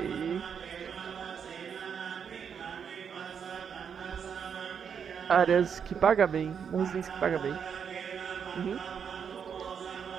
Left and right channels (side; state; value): left; quieter; 7.2 dB